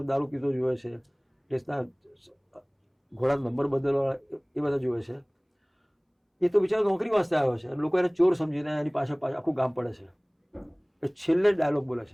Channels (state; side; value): identical; both; correlation 1.00